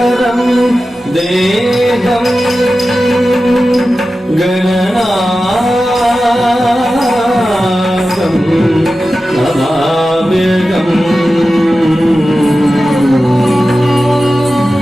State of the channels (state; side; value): normal; both; correlation 0.94